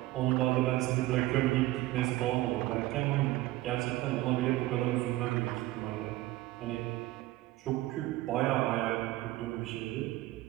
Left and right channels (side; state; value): left; quieter; 17.1 dB